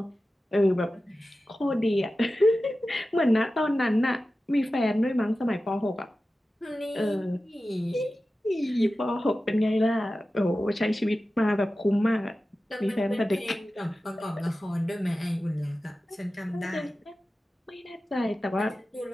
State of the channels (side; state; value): both; normal; correlation 0.94